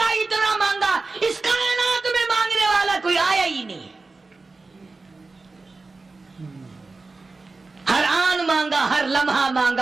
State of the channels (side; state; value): left; quieter; 3.7 dB